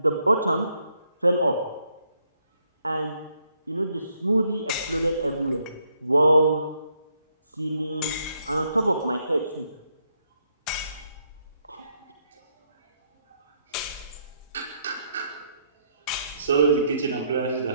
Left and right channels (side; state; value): both; inverted; correlation -0.74